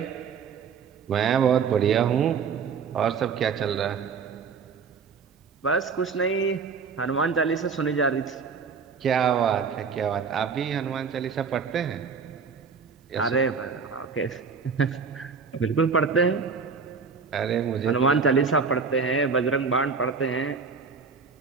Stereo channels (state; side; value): quieter; left; 5.5 dB